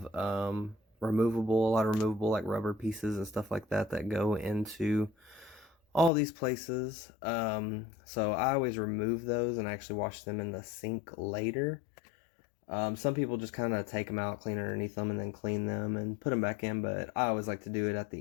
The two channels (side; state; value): right; drops out; at 6.1 s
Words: removable, a lot of removable like rubber pieces and stuff like that that go into all these places. So I always remove those and actually wash them in the sink later. Some people just kind of take them out, clean underneath them, and then clean them and put them back in, but I always like to do it at